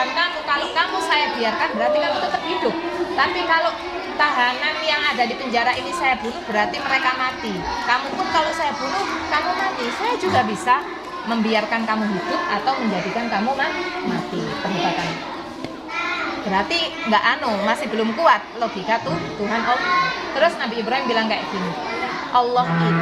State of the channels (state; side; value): identical; both; correlation 1.00